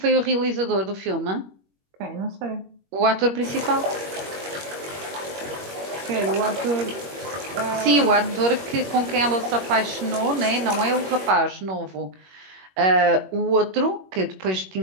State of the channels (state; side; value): late; left; 21 ms